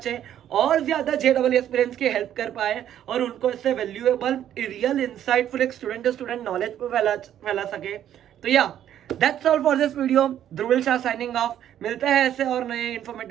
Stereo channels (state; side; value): quieter; left; 10.8 dB